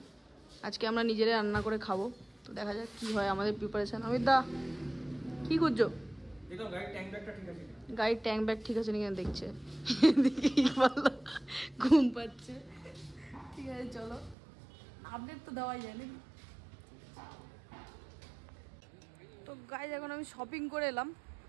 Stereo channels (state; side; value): drops out; left; at 14.4 s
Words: আজকে আমরা নিজেরাই রান্না করে খাবো। তো দেখা যাক কি হয় আমাদের প্রিপারেশন। অমিতদা কি করছো? গাড়ির ট্যাঙ্ক ব্যাগ ঠিক আছে নাকি দেখছে, ঘুম পাচ্ছে। ঠিক আছে চলো, আপডেট তো দেওয়াই যায় নাকি। তো গাইজ এখন আমি শপিং করে এলাম,